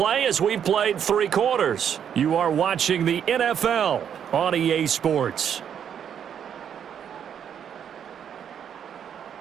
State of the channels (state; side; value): quieter; left; 8.6 dB